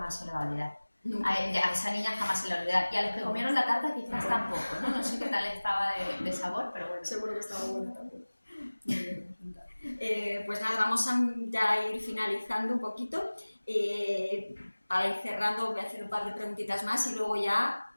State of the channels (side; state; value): both; inverted; correlation -1.00